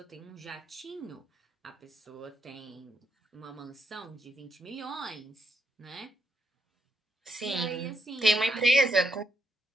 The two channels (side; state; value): both; normal; correlation 0.79